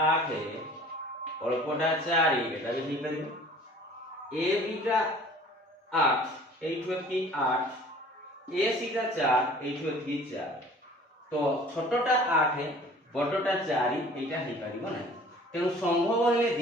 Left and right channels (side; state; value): both; normal; correlation 0.49